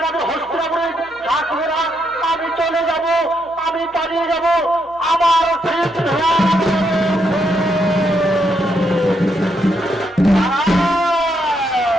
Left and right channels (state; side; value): noise; left; hum, 30 dB below the sound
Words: হস্তিনাপুরে থাকবো না। আমি চলে যাব, আমি পালিয়ে যাব। আমার